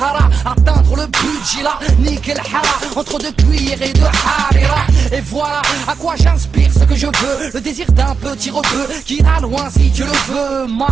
atteindre le budget là, nickel hara, entre deux cuillères et de harira. Et voilà à quoi j'inspire ce que je veux, le désir d'un petit rebeu qui ira loin si Dieu le veut.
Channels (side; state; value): left; quieter; 5.6 dB